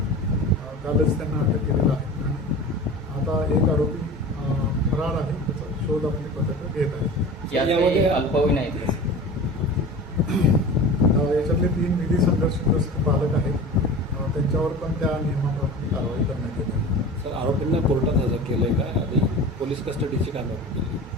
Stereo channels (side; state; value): both; normal; correlation 0.35